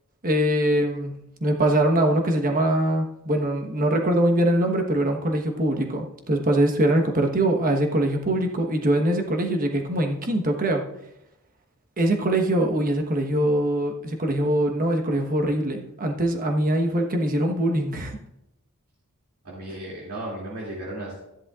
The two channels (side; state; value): both; normal; correlation 0.61